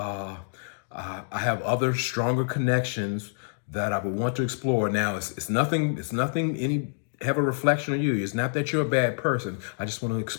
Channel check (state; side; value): silent; right; digital silence